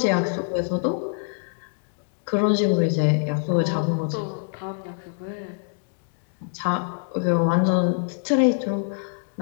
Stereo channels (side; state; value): right; silent; digital silence